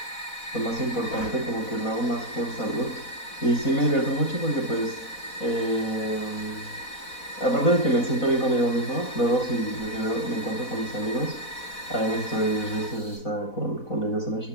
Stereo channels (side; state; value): right; late; 4.1 ms